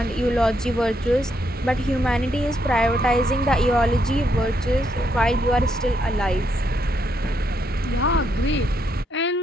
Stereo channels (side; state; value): both; normal; correlation 0.77